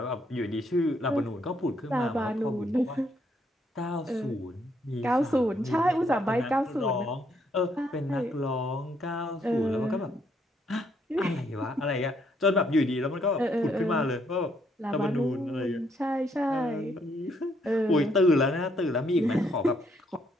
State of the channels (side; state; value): both; normal; correlation 0.71